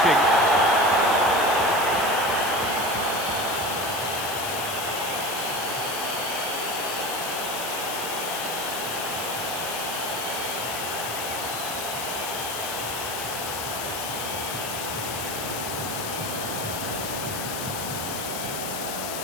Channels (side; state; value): left; noise; hiss, 5 dB below the sound